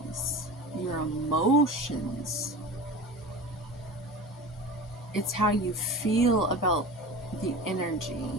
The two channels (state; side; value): normal; both; correlation 0.33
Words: your emotions. It's how you feel about the